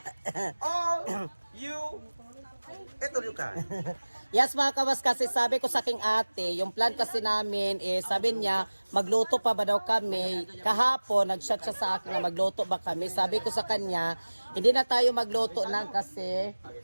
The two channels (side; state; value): both; inverted; correlation -1.00